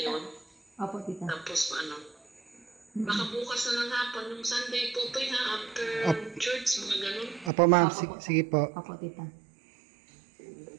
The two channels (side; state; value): left; drops out; at 7.5 s